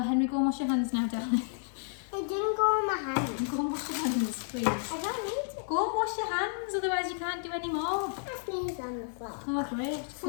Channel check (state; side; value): silent; right; 57 dB below the other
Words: go and wash your hands now, darling. It didn't go on my hands. Go and wash your hands, please. I don't need to. Go and wash your hands, otherwise you can't do any more. I sneezed on the floor. Oh, great.